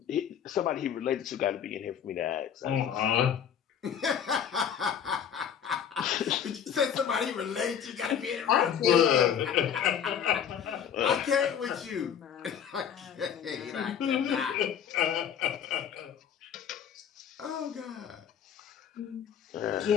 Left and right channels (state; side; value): quieter; right; 8.4 dB